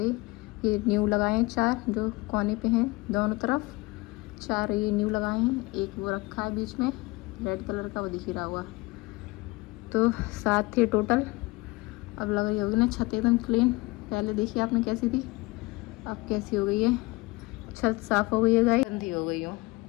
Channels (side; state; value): right; quieter; 23.2 dB